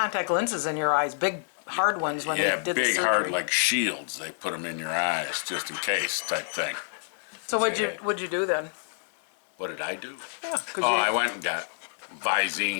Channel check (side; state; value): right; silent; 60 dB below the other